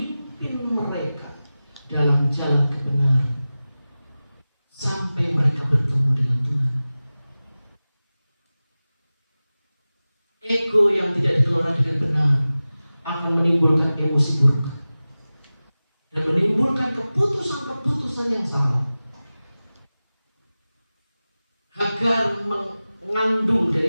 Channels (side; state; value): both; inverted; correlation -0.97